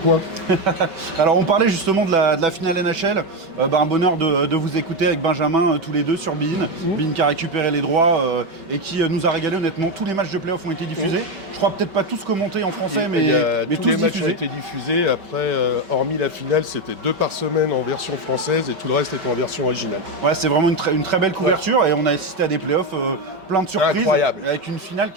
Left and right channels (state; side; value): late; left; 5.2 ms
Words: Alors on parlait justement de la finale NHL, un bonheur de vous écouter avec Benjamin tous les deux sur Bein. Bein qui a récupéré les droits et qui nous a régalé honnêtement. Tous les matchs de playoff ont été diffusés. Je crois peut-être pas tous commentés en français, mais tous tous les matchs diffusés. ont été diffusés. Après, hormis la finale, c'était 2 par semaine en version française et tout le reste était en version originale. Ouais, c'est vraiment une très belle couverture et on a assisté à des playoffs plein de surprises. Incroyable. Avec une finale